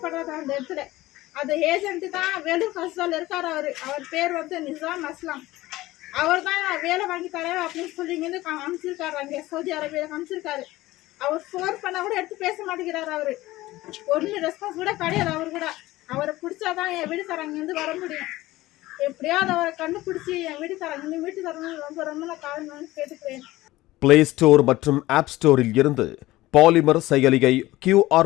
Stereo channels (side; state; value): right; quieter; 17.6 dB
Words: அந்த இடத்துல. அந்த ஏஜென்ட்டு தான் வேலூர் ஹாஸ்டலில் இருக்கார். அவர் பேர் வந்து நிசாம் அஸ்லாம். அவர் தான் வேலை வாங்கி தரேன் அப்படின்னு சொல்லி இங்கேருந்து அனுப்பிச்சிருக்காரு. அங்கே சவுதி அரேபியாவில் அனுப்பிச்சிருக்காரு. அவர் ஃபோன் பண்ணால் கூட எடுத்து பேச மாட்டேங்கிறாரு. அவர் ஒன்றும் ரெஸ்பான்ஸ் கூட கிடையாது. அவர் கூட அவரை பிடிச்சாதான் என் வீட்டுக்காரங்கேருந்து வர முடியும். எப்படியாவது அவரை கண்டுபிடிச்சி என் வீட்டுக்காரங்க வீட்டுக்காரங்க ரொம்ப ரொம்ப நான் காரணம் கேட்டுக்கிறேன். பிளே ஸ்டோர் மற்றும் ஆப் ஸ்டோரில் இருந்து பாலிமர் செயலியை